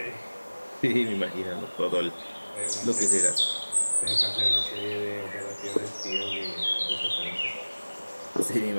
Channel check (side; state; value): both; inverted; correlation -1.00